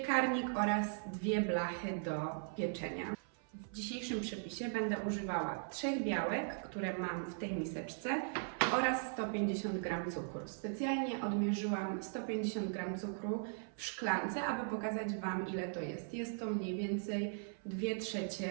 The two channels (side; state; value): left; silent; 52 dB below the other